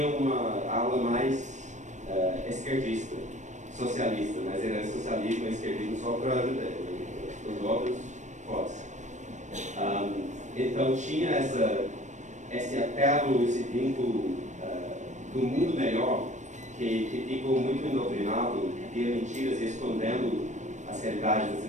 uma aula mais esquerdista, socialista, mas era socialismo e esquerdismo só para os outros fora. Então tinha esse apelo, esse vínculo do mundo melhor, que ficou muito endoctrinado via mentiras e escondendo as realidades da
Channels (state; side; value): late; left; 0.35 ms